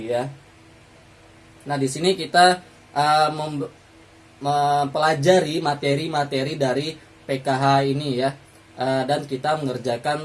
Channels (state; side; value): identical; both; correlation 1.00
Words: ya. Nah, di sini kita mempelajari materi-materi dari PKH ini ya, dan kita